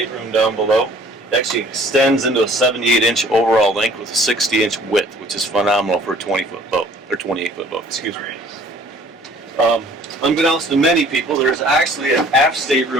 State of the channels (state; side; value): normal; both; correlation 0.54